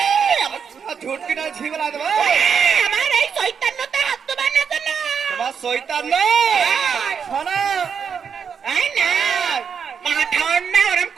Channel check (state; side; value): quieter; left; 6.8 dB